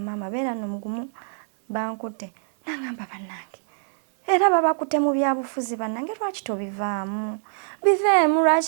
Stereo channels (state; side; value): silent; left; digital silence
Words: beera nno mugumu bankutte nangamba bannange era babakutte mu byabufuzi bannange lwaki tobivaamu biveemu